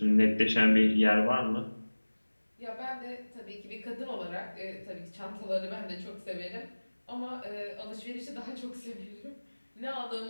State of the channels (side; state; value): both; inverted; correlation -1.00